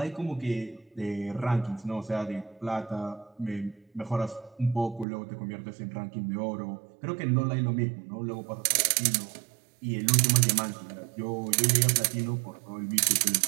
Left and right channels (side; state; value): left; drops out; at 5.1 s